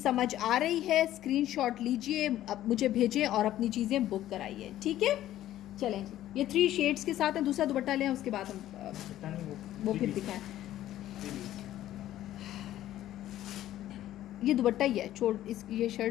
आ रही है स्क्रीनशॉट लीजिए, अब मुझे भेजें और अपनी चीज़ें बुक कराइए, ठीक है। चलें जी, ये 3 शेड्स के साथ है। दूसरा दुपट्टा लें, उसके बाद हम वो फिर दिखाएं। ये दुपट्टा ही है, छोड़ इस, ये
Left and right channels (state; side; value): quieter; right; 13.3 dB